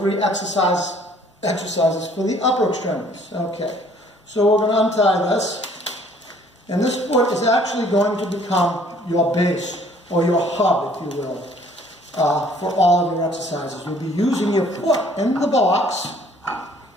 exercises for the upper extremities. Okay, So we're going to untie this. And this foot is actually going to become your base, or your hub, if you will, for all of your exercises. You'll be using your foot in the box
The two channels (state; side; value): normal; both; correlation 0.58